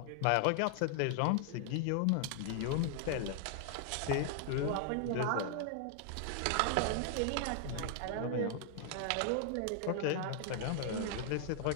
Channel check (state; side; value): different; both; correlation 0.00